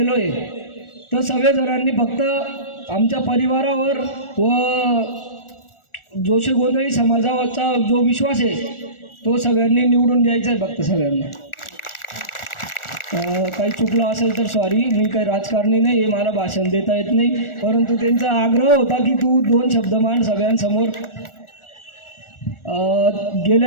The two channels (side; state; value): right; late; 1.4 ms